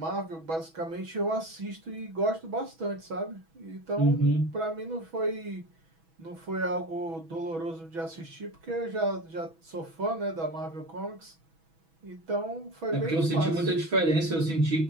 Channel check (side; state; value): left; late; 6.1 ms